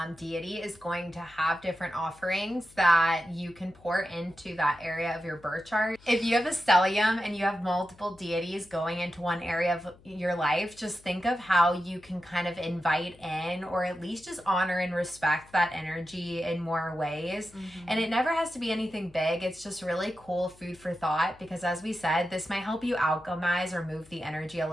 deity is going to have different offerings that you can pour into that area of your birth chart. If you have a stellium and you have multiple deities going into one area of your life, just think of how you can kind of invite in or at least just honor and respect that energy in more ways. And it never has to be anything big. It's just really cool food for thought, because as we said, this might help you alchemize or move the energy a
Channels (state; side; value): noise; left; hum, 26 dB below the sound